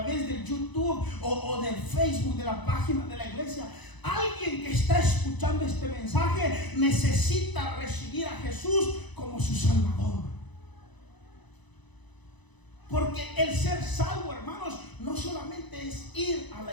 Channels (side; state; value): right; late; 1.0 ms